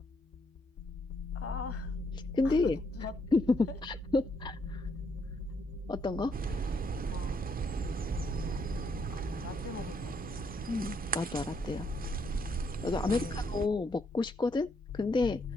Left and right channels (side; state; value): both; normal; correlation 0.74